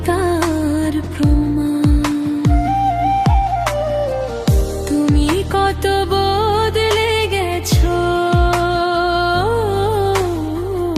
তার প্রমাণ। তুমি কত বদলে গেছো,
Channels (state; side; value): identical; both; correlation 1.00